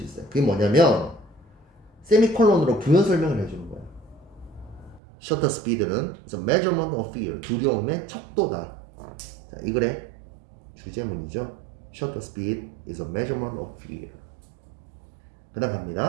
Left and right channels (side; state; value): left; drops out; at 5.0 s